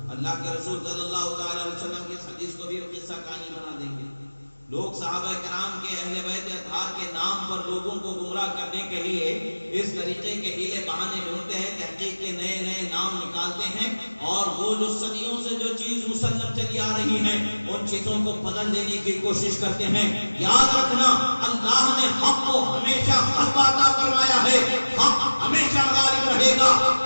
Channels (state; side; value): inverted; both; correlation -1.00